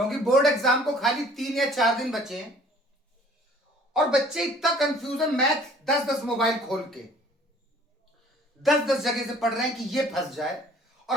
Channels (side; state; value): both; normal; correlation 0.53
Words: बोर्ड एग्जाम को खाली 3 या 4 दिन बचे हैं और बच्चे इतना कंफ्यूज है। मैथ 10-10 मोबाइल खोल के 10-10 जगह से पढ़ रहे हैं कि ये फंस जाए